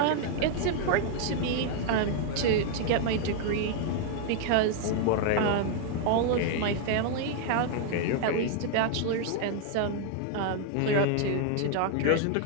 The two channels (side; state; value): both; different; correlation 0.00